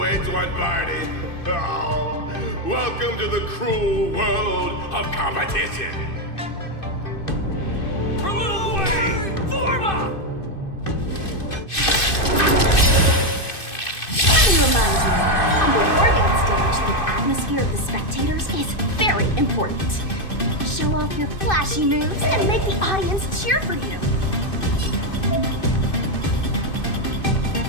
one party. Oh, welcome to the cruel world of competition. For Lil Gwei, Forma! Let me remind you, on the Wargame stage, the atmosphere of the spectators is very important. Show off your flashy moves and make the audience cheer for you.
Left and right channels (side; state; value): right; late; 2.6 ms